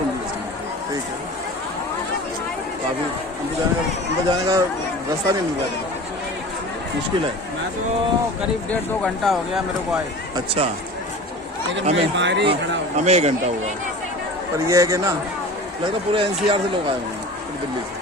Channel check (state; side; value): normal; both; correlation 0.37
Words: से, ठीक है। काफी अंदर जाने का रास्ता नहीं मिल रहा, मुश्किल है। मैं तो करीब 1.5-2 घंटा हो गया मेरे को आए। अच्छा, लेकिन मैं बाहर ही खड़ा हूँ। हमें 1 घंटा हुआ, पर यह है कि ना लगता पूरे एनसीआर से लोग आए हुए हैं, पूरी दिल्ली से